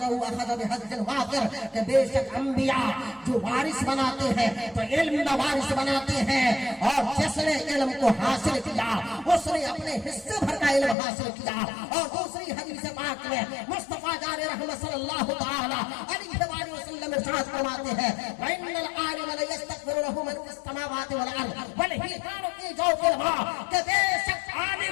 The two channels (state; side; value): drops out; right; at 11.0 s